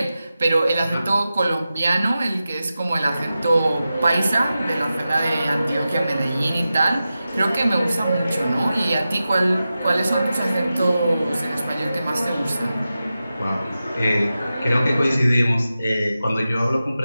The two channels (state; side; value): inverted; both; correlation -0.93